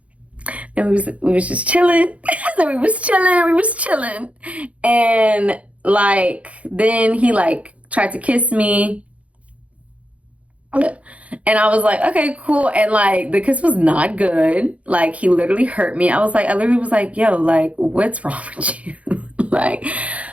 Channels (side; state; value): left; late; 0.065 ms